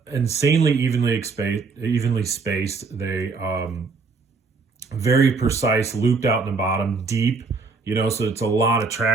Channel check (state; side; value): quieter; left; 4.4 dB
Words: insanely evenly spaced. They very precise, looped out in the bottom, deep, so it's a lot of